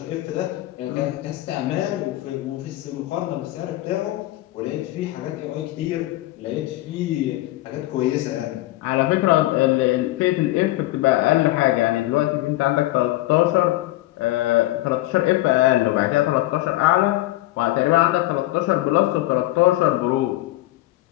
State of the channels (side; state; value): right; quieter; 17.4 dB